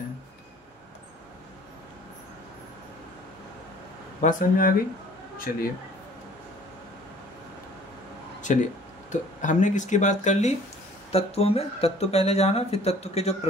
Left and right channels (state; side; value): normal; both; correlation 0.52